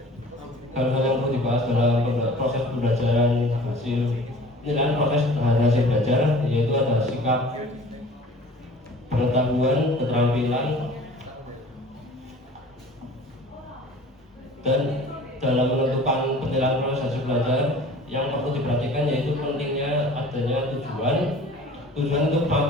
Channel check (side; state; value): both; normal; correlation 0.45